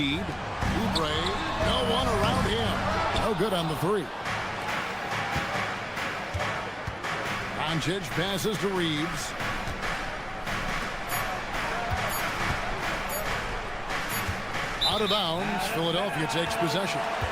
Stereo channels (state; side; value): identical; both; correlation 1.00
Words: Oubre. No one around him. No good on the 3. Doncic passes to Reeves. Out of bounds. Philadelphia takes possession.